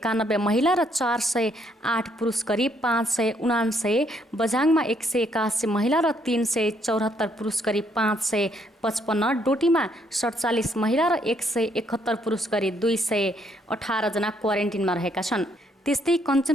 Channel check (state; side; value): normal; both; correlation 0.70